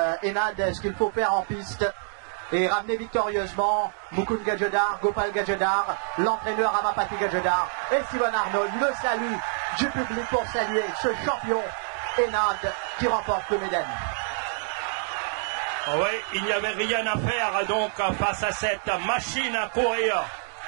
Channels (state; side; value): silent; left; 61 dB below the other